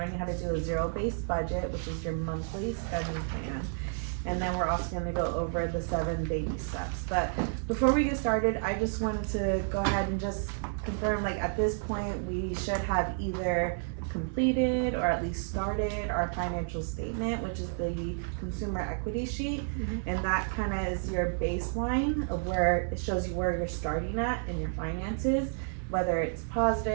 how to do a zero-based budget, which is your monthly spending plan. And then we're also going to go over the 7 baby steps. But before we get started, I just wanted to go ahead and just confirm, like at this point, we should have either completed or at least started our financial statement, which is the consumer equity sheet. And that kind of is your baseline of where it shows you where you're starting at in your finances, whether it's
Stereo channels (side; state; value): left; silent; 57 dB below the other